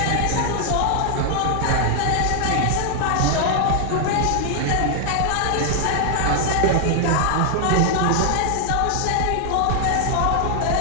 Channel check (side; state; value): both; different; correlation 0.00